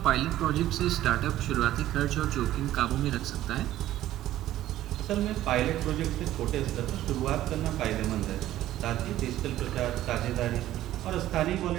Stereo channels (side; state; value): left; quieter; 13.8 dB